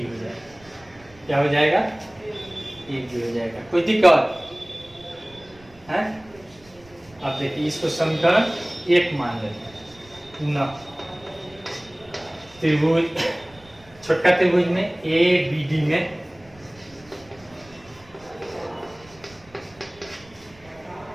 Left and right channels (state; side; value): noise; right; rumble, 26 dB below the sound